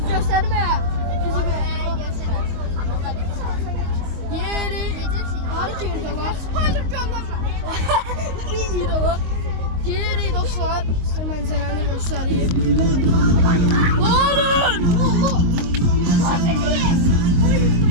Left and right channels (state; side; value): late; left; 22 ms